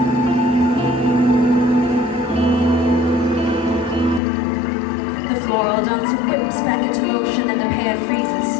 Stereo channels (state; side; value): drops out; right; at 4.2 s